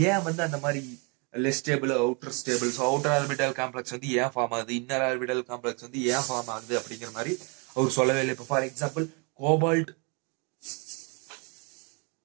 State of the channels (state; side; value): quieter; left; 33.3 dB